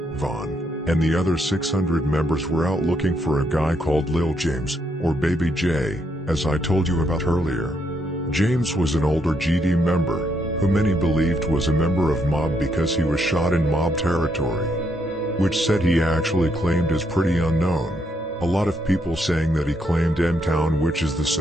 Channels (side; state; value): both; normal; correlation 0.76